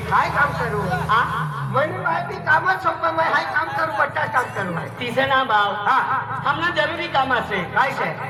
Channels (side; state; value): both; identical; correlation 1.00